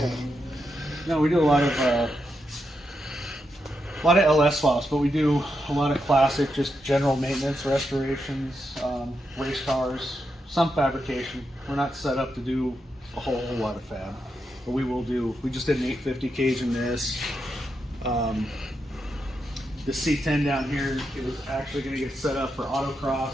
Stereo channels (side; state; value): both; normal; correlation 0.84